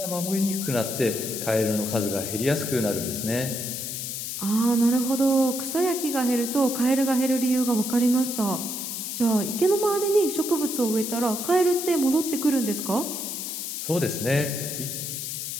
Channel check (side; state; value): left; noise; hiss, 5 dB below the sound